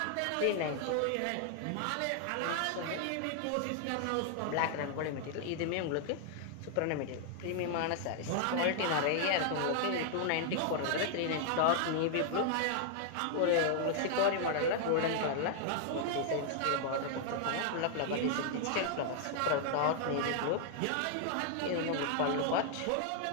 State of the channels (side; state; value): both; different; correlation 0.00